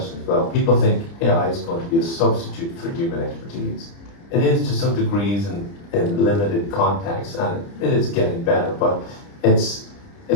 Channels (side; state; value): right; late; 30 ms